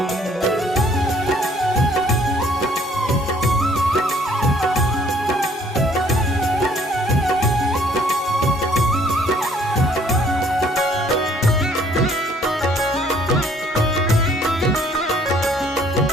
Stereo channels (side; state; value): both; normal; correlation 0.60